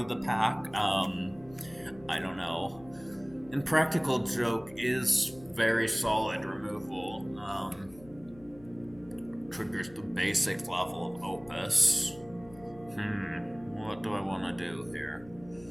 the pack. I don't know. And Practical Joke is very solid removal. Triggers the basic level of Opus. What do I want to do here?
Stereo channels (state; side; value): noise; left; hum, 22 dB below the sound